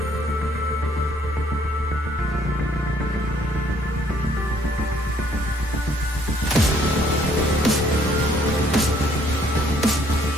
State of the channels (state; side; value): normal; both; correlation 0.64